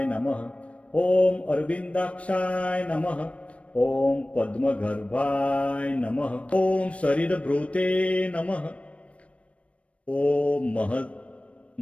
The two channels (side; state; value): right; late; 0.063 ms